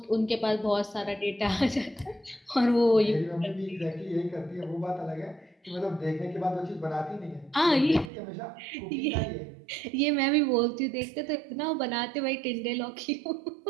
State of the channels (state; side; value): drops out; left; at 8.1 s